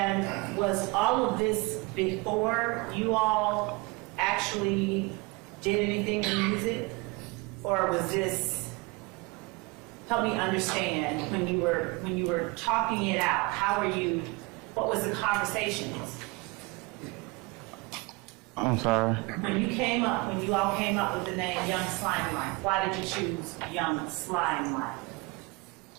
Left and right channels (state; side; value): quieter; left; 26.2 dB